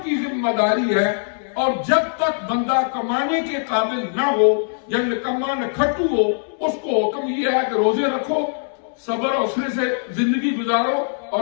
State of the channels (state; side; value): silent; right; digital silence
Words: کی ذمہ داری ہے، اور جب تک بندہ کمانے کے قابل نہ ہو یا نکما نہ کھٹو ہو، اس کو حکم یہ ہے کہ روزے رکھو، صبر حوصلے سے زندگی گزارو،